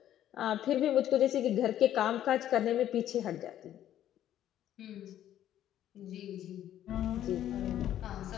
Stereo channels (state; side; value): quieter; right; 11.6 dB